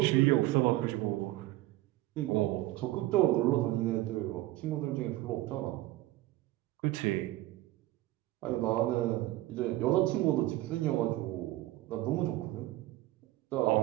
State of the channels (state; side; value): quieter; left; 17.0 dB